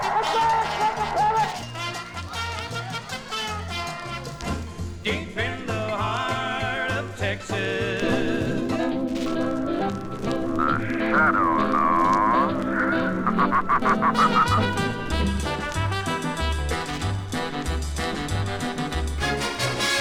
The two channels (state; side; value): identical; both; correlation 1.00